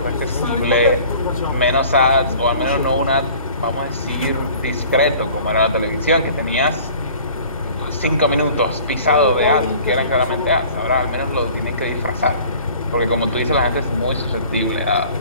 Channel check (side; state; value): both; inverted; correlation -0.48